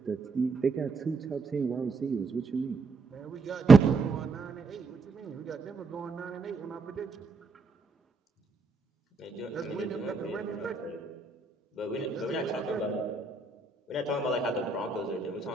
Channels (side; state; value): left; quieter; 4.1 dB